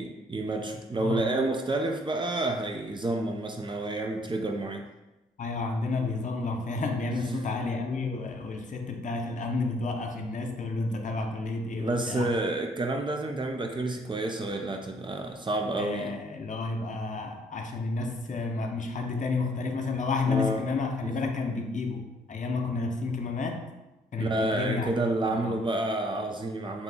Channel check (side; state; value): both; normal; correlation 0.64